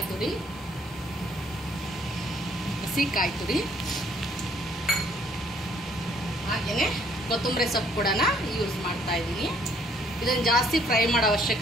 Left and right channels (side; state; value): both; normal; correlation 0.64